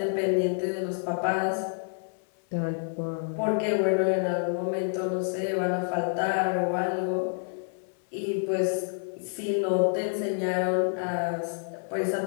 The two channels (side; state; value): right; silent; 59 dB below the other